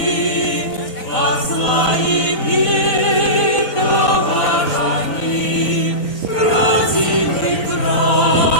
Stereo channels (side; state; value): right; late; 4.0 ms